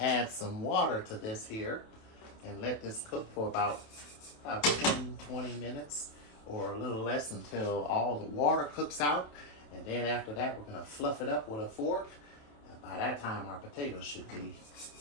some water to this here and let this cook for about 10-20 minutes or a little less until all the water cooks out. And then after that, we're going to fluff it up with a fork. And by that time, our potatoes should be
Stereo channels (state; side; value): late; right; 27 ms